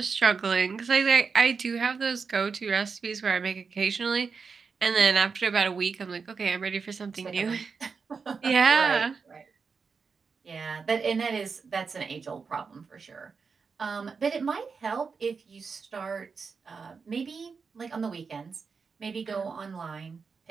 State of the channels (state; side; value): quieter; left; 5.3 dB